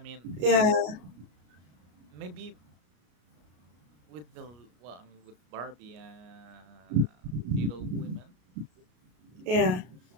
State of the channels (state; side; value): late; left; 33 ms